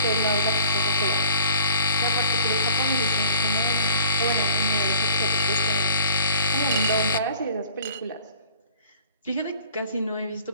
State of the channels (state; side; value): inverted; both; correlation -0.52